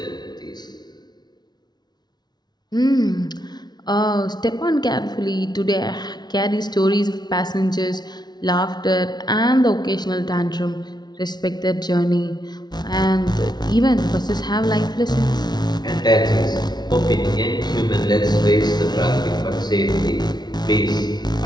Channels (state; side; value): late; right; 0.20 ms